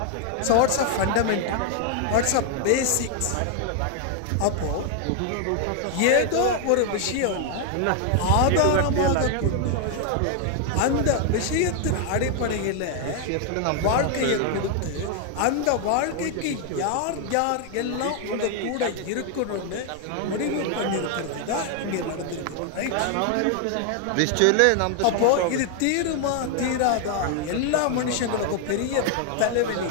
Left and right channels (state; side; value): different; both; correlation 0.00